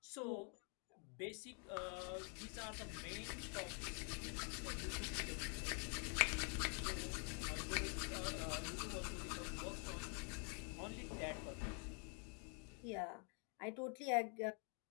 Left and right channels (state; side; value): quieter; right; 39.7 dB